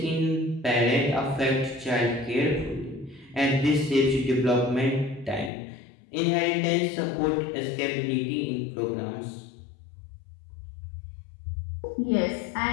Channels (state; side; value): drops out; right; at 5.5 s